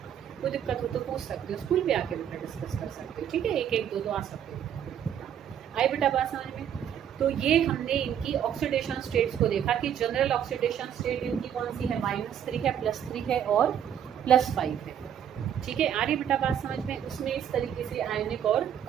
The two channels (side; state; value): left; quieter; 9.3 dB